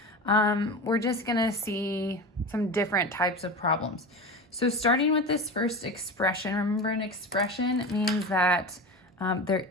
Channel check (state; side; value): normal; both; correlation 0.27